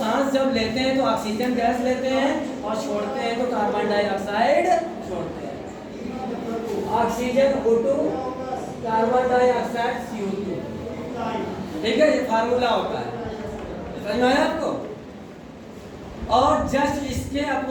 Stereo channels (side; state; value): both; identical; correlation 1.00